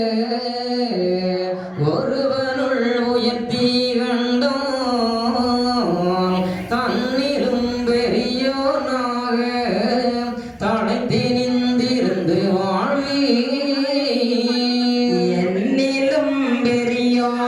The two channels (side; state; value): both; identical; correlation 1.00